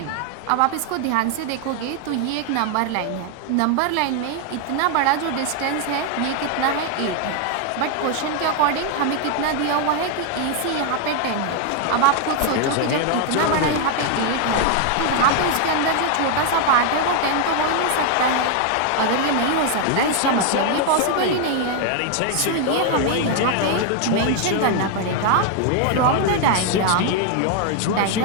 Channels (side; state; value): both; different; correlation 0.00